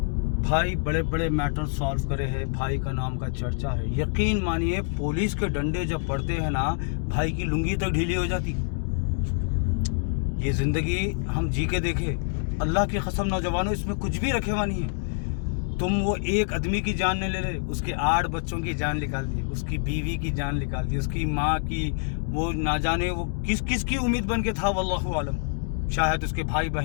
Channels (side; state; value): right; silent; 61 dB below the other